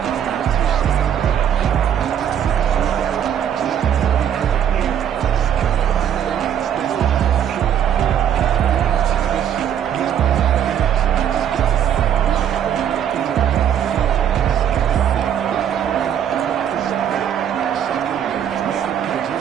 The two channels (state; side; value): quieter; left; 9.4 dB